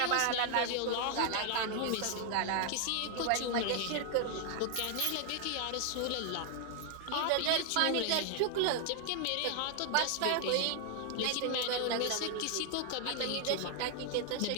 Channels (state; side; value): different; both; correlation 0.00